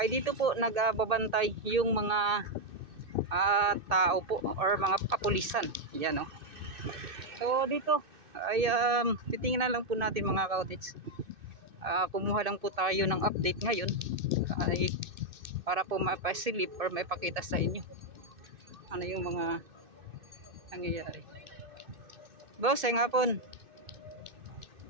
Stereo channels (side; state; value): left; late; 2.6 ms